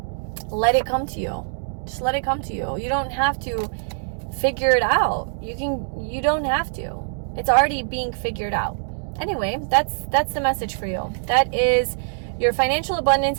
let it come to you. Just let it come to you. You don't have to figure it out. You don't have to. It's already being figured out. Anyway, that's the message for you. That is your financial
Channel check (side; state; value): left; silent; digital silence